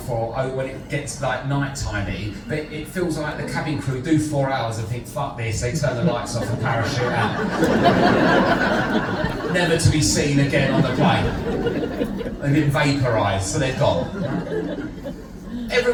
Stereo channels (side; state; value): both; identical; correlation 1.00